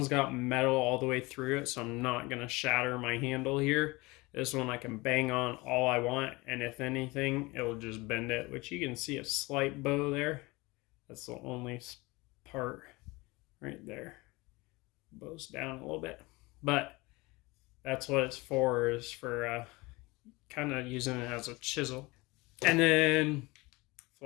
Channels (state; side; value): quieter; right; 23.3 dB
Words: got metal all the way through it, so I'm not going to shatter my handle here. This one I can bang on all I want, and if anything, it'll just bend it, which you can see a slight bow there. That's the only part right there. Bows down a little bit, but that's what it's for, is for kind of using it as a chisel. And then